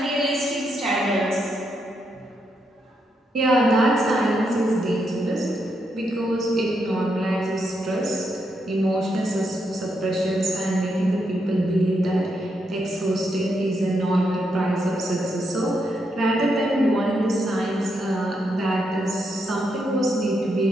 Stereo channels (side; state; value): both; normal; correlation 0.80